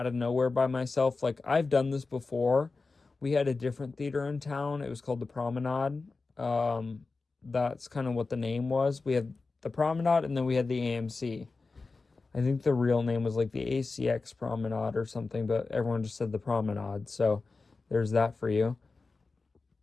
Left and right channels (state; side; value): quieter; right; 3.9 dB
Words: of nowhere by myself. Like I've done this before. We had a different theater in town. It was called the Promenade. That's kind of what the name was. We had the Promenade and then we had the AMC. I think the real name was like the ACX Promenade or something, but everyone just said the Promenade. So there's that for you.